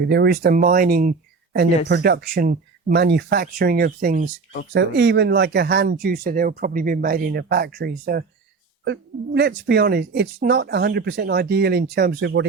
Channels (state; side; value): quieter; left; 4.5 dB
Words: There is the mining and Yes. the production, manufacturing of things. So course. even like a hand juicer, they'll probably be made in a factory. So let's be honest, it's not 100% ideal in terms of what